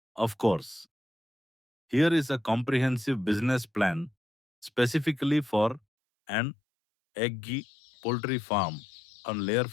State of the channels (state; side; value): drops out; right; at 5.8 s